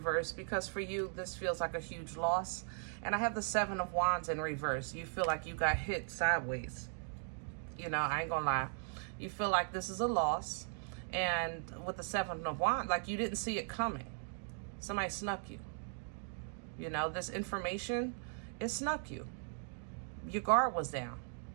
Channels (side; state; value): left; silent; 52 dB below the other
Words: because for you, this feels like a huge loss. And I have the Seven of Wands in reverse. You feel like you got hit sideways. You know, I ain't gonna lie. You feel like this is a loss. And with the Seven of Wands, like you didn't see it coming. Somebody snuck you. You know, this information, it snuck you. Your guard was down.